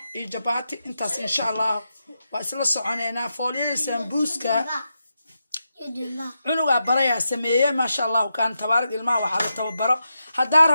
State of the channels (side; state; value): both; inverted; correlation -0.87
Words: iyo jabati intaas insha Allah waa isla soconeena fooliyada sambuuska cunuga baraya sameeyay ma sha Allah kan tabaarak ilmaha waxa la tababaro hadaa